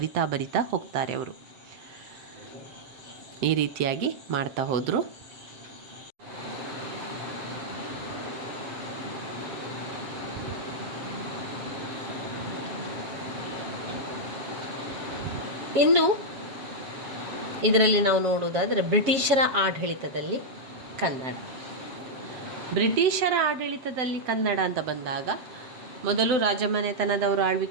ಹೋಗ್ತಾರೆ ಅವರು. ಈ ರೀತಿಯಾಗಿ ಮಾಡ್ತಾ ಹೋದರು. ಇನ್ನು ಇದರಲ್ಲಿ ನಾವು ನೋಡುವುದಾದರೆ ಬ್ರಿಟಿಷರ ಆಡಳಿತದಲ್ಲಿ ಕನ್ನಡ. ಬ್ರಿಟಿಷರ ಆಡಳಿತದಲ್ಲಿ ಕನ್ನಡ ಅಂತ ಬಂದಾಗ ಮೊದಲು ರಾಜಮನೆತನದವರು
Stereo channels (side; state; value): left; late; 7.3 ms